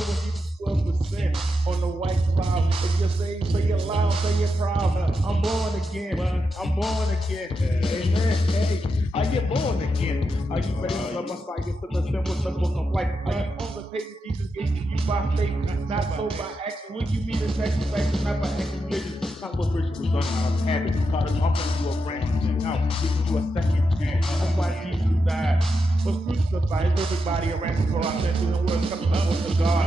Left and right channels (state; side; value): normal; both; correlation 0.86